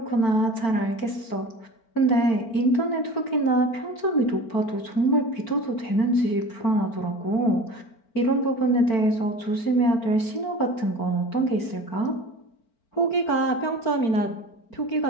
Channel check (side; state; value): right; late; 4.4 ms